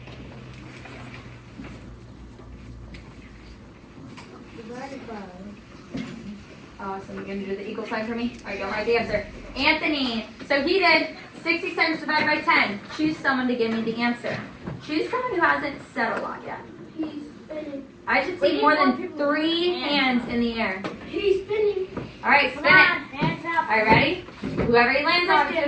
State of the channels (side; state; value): both; identical; correlation 1.00